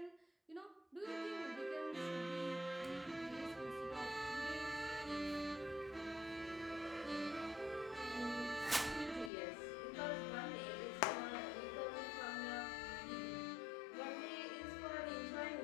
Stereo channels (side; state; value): right; drops out; at 9.3 s